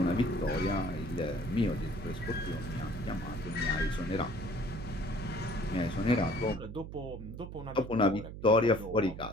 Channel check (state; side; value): noise; right; hum, 10 dB below the sound